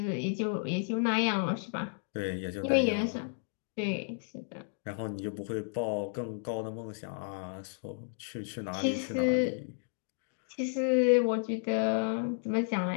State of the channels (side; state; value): right; silent; digital silence